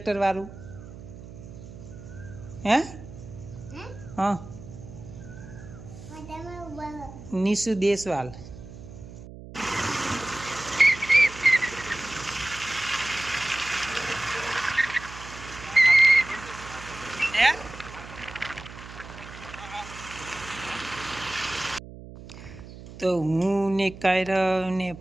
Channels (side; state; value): right; noise; hum, 15 dB below the sound